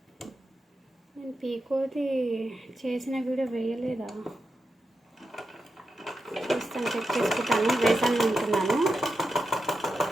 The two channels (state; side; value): normal; both; correlation 0.88